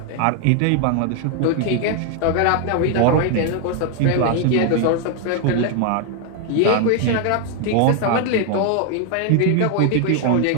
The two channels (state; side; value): different; both; correlation 0.00